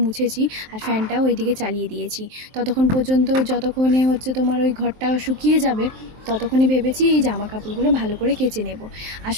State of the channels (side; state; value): left; late; 23 ms